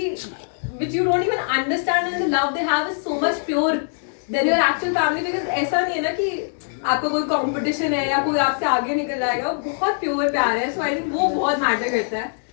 which you don't even understand, and the love they have is so much pure than your actual family, because ऐसा नहीं है ना कि आपका कोई कंपटीशन है या कोई आपसे आगे निकल जाएगा, बहुत प्योर प्यार है. सो आई थिंक वो बहुत मैटर करता है.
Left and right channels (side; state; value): right; silent; digital silence